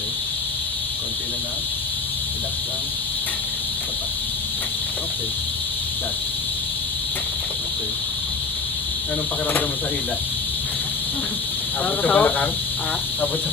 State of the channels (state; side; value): quieter; right; 4.3 dB